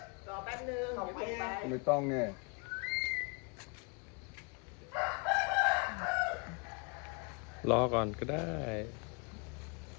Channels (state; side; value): quieter; right; 33.1 dB